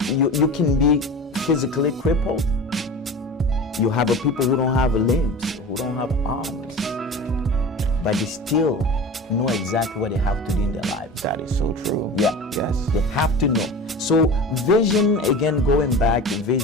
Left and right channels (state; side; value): normal; both; correlation 0.34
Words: You can be physically crippled. You have people who don't have limbs, who don't have arms, but they still know exactly what they have to do in their lives. That is so true. Yeah. Yes. They have to know. So vision, again, going back,